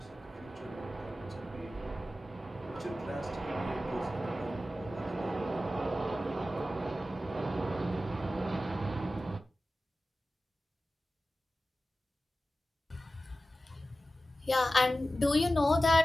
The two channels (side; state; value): both; normal; correlation 0.94